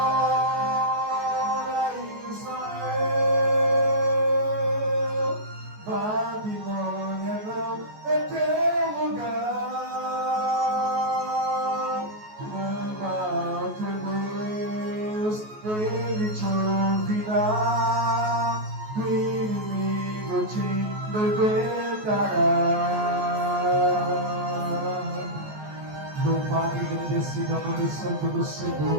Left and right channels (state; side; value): late; left; 14 ms